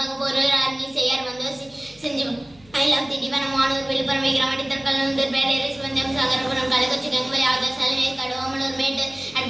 அன்னி செய்யார் வந்து செஞ்சு ஐலாம் திண்டிவனம் வானூர் விழுப்புரம் விக்கிரமட்டி திருக்கல்லூர் பேரேரி சிவந்தம் சாகரபுரம் கள்ளக்குறிச்சி கங்குவலி ஆதர் சலவை கடோமலூர் மேட்டு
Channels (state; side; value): noise; left; hum, 27 dB below the sound